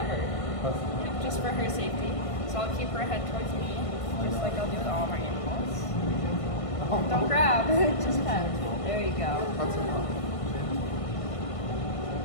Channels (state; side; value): late; right; 1.5 ms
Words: her. Yep, just for her safety. So I'll keep her head towards me, just like I'll do with all of our animals. Don't grab, just pet. There you go. That's enough.